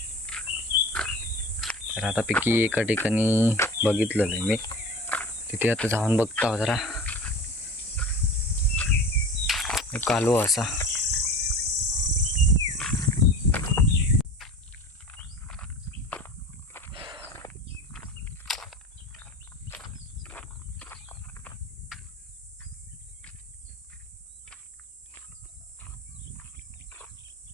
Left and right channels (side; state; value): both; normal; correlation 0.36